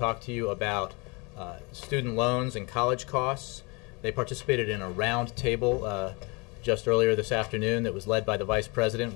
to you about student loans and college costs. They participated in a round table just earlier this afternoon that was led by the Vice President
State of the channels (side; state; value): right; quieter; 28.9 dB